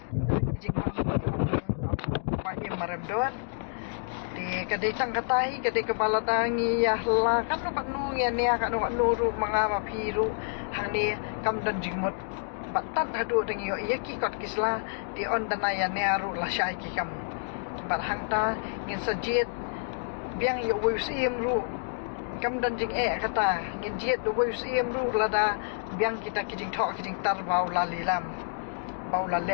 kita kijing bangsa jong tau pa I maramdon di kadai tang katai kadai kepala tangi ya la kan no kanu ya ne kan no nuru mangama phiru hang ni kam dan jingmut batat hadu deng yo ya ki kot kisla di on danaya ne aru la syai kikam bar hang ta ngin sajit biang yo wisiem ru kam dan jing kata ngin jiet do wisiem ru lada biang kita kijing thok kijing tar bau lalilam bau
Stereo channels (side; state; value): right; silent; digital silence